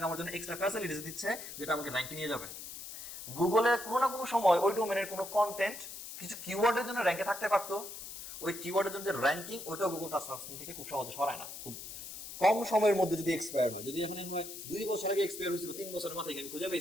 আমার জন্য এক্সট্রা ফ্যাসিলিটিস দিচ্ছে যেটা আমাকে র্যাঙ্কে নিয়ে যাবে। গুগলে কোনো না কোনো সময় ওই ডোমেনের কোনো কন্টেন্ট কিছু কিওয়ার্ডের জন্য র্যাঙ্কে থাকতে পারতো, ওই কিওয়ার্ডের জন্য যে র্যাঙ্কিং ওইটাও গুগল তার সার্চ থেকে খুব সহজে সরায় না, খুব কম সময়ের মধ্যে যদি এক্সপায়ার হয়। যদি এখন 2 বছর আগে এক্সপায়ার হয়েছিল, 3 বছরের মাথায় আমি খুঁজে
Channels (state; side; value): noise; left; hiss, 10 dB below the sound